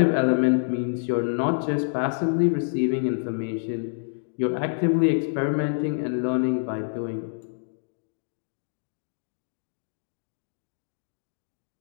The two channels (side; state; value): right; silent; digital silence